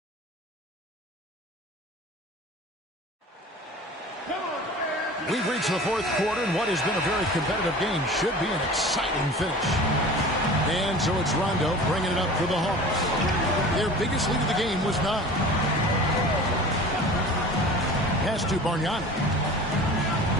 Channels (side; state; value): both; normal; correlation 0.40